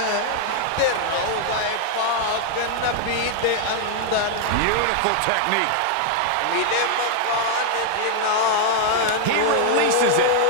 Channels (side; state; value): both; different; correlation 0.00